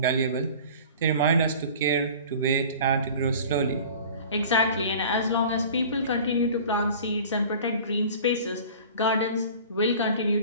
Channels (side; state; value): both; inverted; correlation -0.42